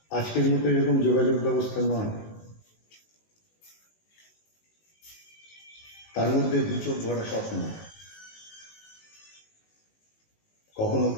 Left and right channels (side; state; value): right; late; 19 ms